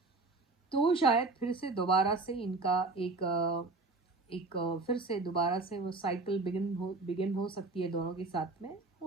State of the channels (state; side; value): quieter; left; 3.5 dB